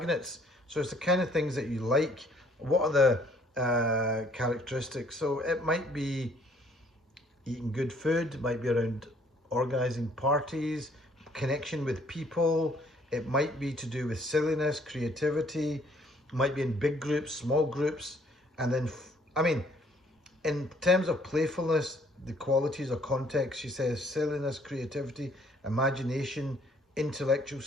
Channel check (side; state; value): both; normal; correlation 0.62